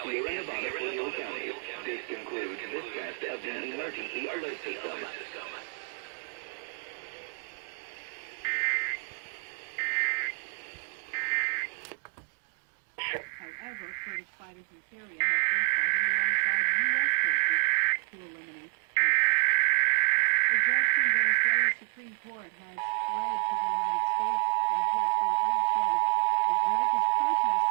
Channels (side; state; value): left; silent; digital silence